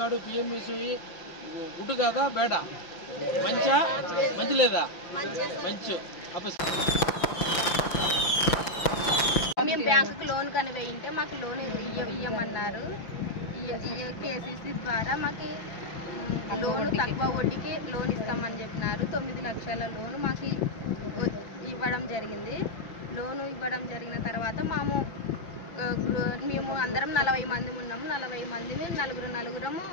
పిఎంఎస్వై గుడ్ కాదా బేడా, మంచి లేదా, మంచి. మేము బ్యాంకుకి లోన్ కని వేయింటే మాకు లోన్ ఇవ్వమన్నారు. కేసీసీ ద్వారా మాకు లోన్ తక్కువ వడ్డీకి లోన్ ఇస్తామని చెప్పినారు. 9 లక్షల లోన్ మాకు ఇవ్వడం జరిగింది. లోను ఇవ్వడం జరిగిన తర్వాత మేము అందరం 40 మంది ఉన్నాము. 40 మందిని నలుగురము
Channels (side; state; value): right; late; 5.8 ms